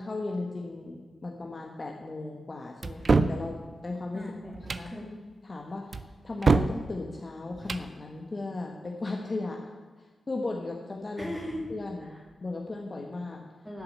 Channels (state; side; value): normal; both; correlation 0.91